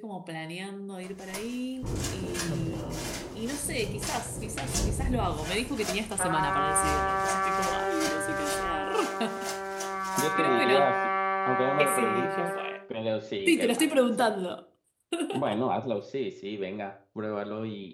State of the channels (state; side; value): identical; both; correlation 1.00